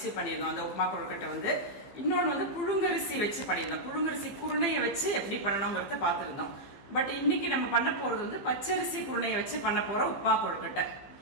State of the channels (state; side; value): late; right; 15 ms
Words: பண்ணியிருந்தோம் அந்த உப்மா கொழுக்கட்டை வந்து. இன்னொன்று வந்து புழுங்கரிசி வச்சு பண்ணியிருந்தோம், புழுங்கரிசி குருணையை வச்சு எப்படி பண்ணணுங்கிறத பார்த்துருந்தோம். பட் இன்னைக்கு நம்ம பண்ண போறது வந்து பச்சரிசி குருணையை வச்சு பண்ண போற உப்மா கொழுக்கட்டை.